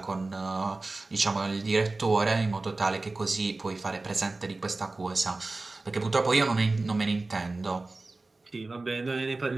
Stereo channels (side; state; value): left; quieter; 3.3 dB